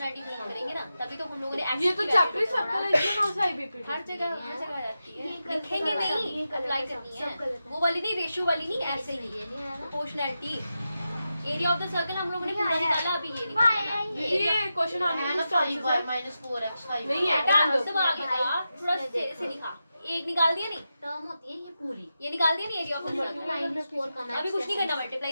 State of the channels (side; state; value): both; inverted; correlation -0.90